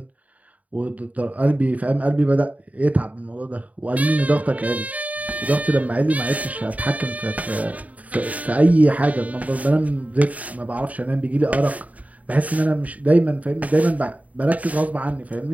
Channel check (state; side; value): late; left; 0.071 ms